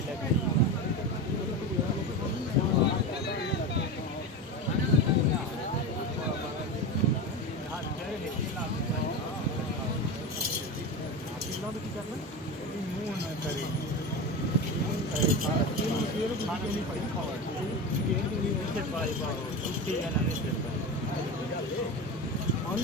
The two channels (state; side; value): normal; both; correlation 0.23